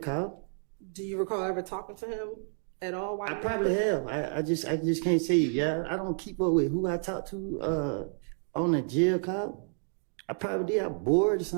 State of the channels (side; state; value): left; silent; 58 dB below the other